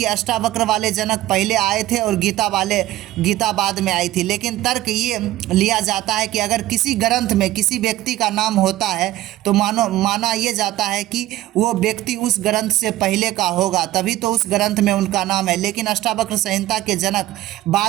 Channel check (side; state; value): left; quieter; 15.3 dB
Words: अष्टावक्र वाले जनक पहले आए थे और गीता बाद में आई थी। लेकिन तर्क ये लिया जाता है कि अगर किसी ग्रंथ में किसी व्यक्ति का नाम होता है तो माना ये जाता है कि वो व्यक्ति उस ग्रंथ से पहले का होगा, तभी तो उस ग्रंथ में उनका नाम है। लेकिन अष्टावक्र संहिता के जनक